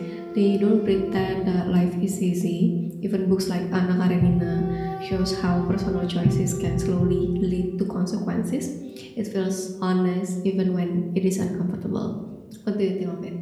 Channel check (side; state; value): both; identical; correlation 1.00